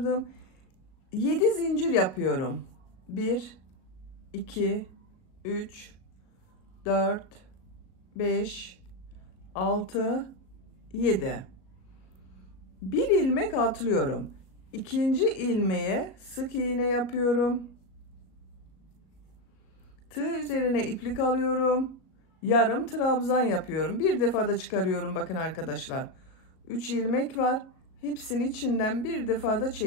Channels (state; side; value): late; right; 37 ms